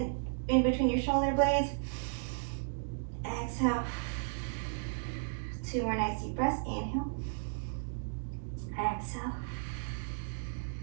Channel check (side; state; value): left; silent; digital silence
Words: between your shoulder blades. Exhale. 2 more nice deep breaths. Inhale. Exhale.